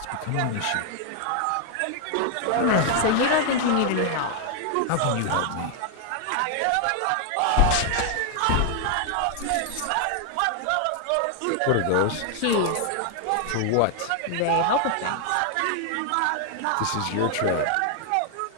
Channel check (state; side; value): different; both; correlation 0.00